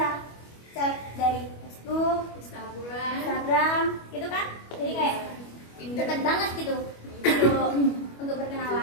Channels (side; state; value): right; late; 25 ms